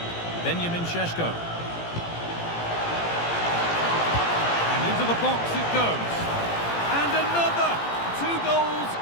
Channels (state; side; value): late; right; 18 ms